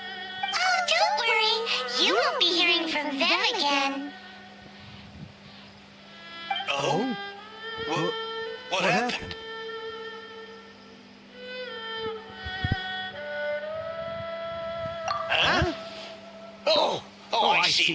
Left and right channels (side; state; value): both; identical; correlation 1.00